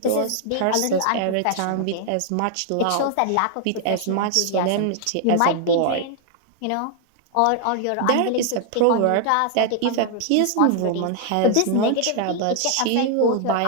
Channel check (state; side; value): different; both; correlation 0.00